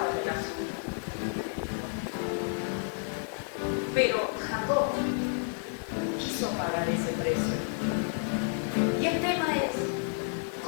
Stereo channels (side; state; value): right; silent; 57 dB below the other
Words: en el asunto. Pero Jacob quiso pagar ese precio. Y el tema es,